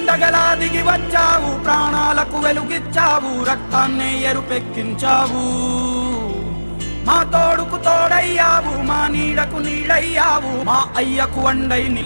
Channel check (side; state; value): both; inverted; correlation -1.00